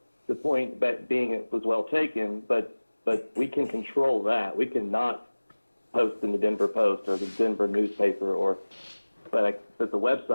the point being it was well taken, but we can control that. We cannot post in the Denver Post or the Denver newspaper but the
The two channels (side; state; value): both; inverted; correlation -1.00